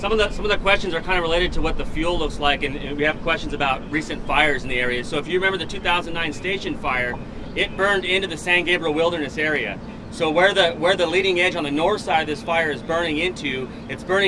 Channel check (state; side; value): identical; both; correlation 1.00